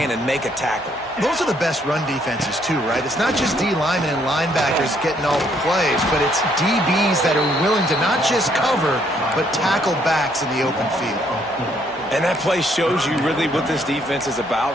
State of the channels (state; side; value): normal; both; correlation 0.69